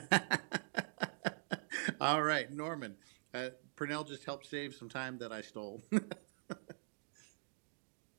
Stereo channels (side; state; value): left; silent; digital silence